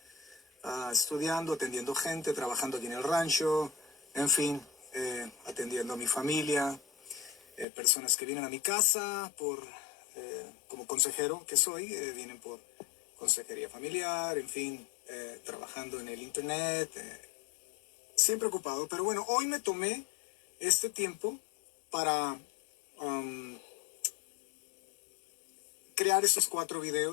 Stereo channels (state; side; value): drops out; right; at 7.7 s